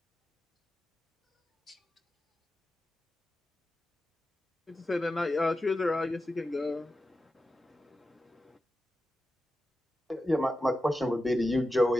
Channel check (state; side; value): normal; both; correlation 0.92